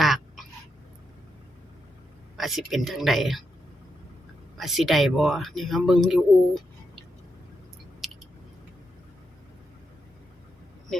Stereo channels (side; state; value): both; normal; correlation 0.84